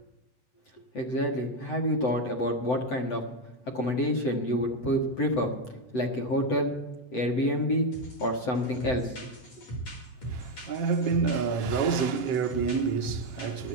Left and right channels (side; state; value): right; late; 7.4 ms